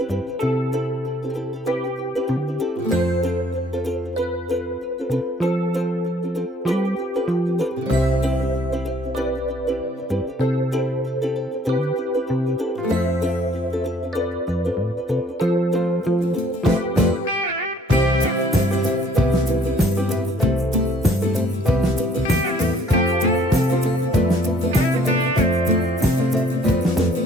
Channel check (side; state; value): both; normal; correlation 0.60